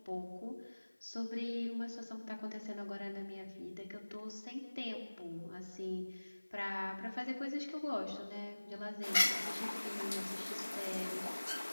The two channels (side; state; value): both; inverted; correlation -1.00